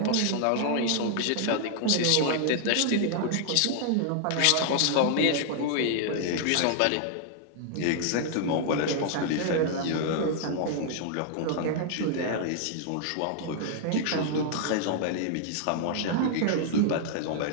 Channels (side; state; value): both; different; correlation -0.01